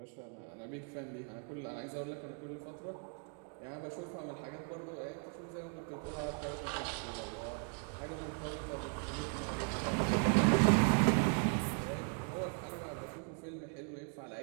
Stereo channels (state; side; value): quieter; left; 39.8 dB